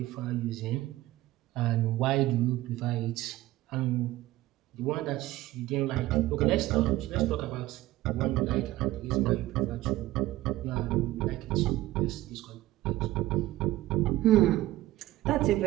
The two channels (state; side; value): quieter; left; 16.3 dB